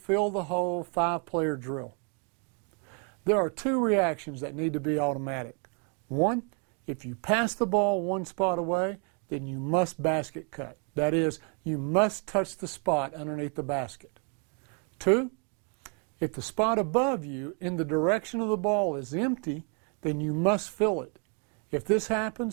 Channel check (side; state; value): left; quieter; 38.6 dB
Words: the hole, 5-player drill. There are 2 reactions that need to be automatic. 1, if you pass the ball one spot away, then you must basket cut. That is, you must touch the spot underneath the basket. 2, if the spot above you in the direction of the ball is empty, then you must fill it. If this